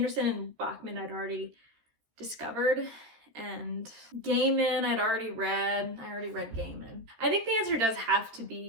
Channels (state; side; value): late; left; 14 ms